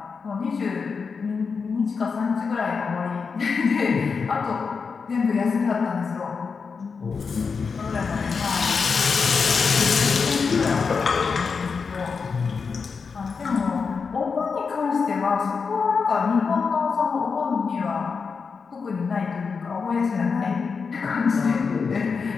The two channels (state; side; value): quieter; right; 5.3 dB